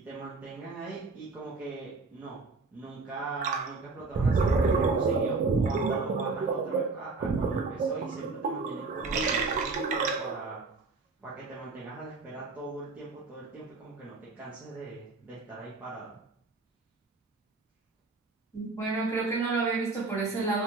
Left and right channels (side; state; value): left; quieter; 3.8 dB